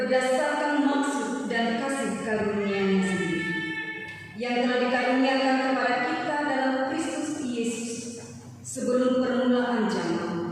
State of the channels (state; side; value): identical; both; correlation 1.00